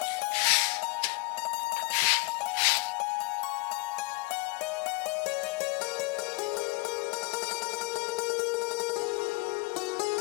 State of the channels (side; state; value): right; quieter; 27.6 dB